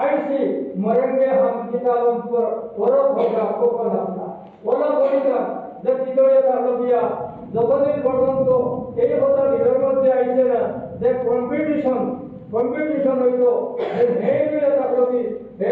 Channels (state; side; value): identical; both; correlation 1.00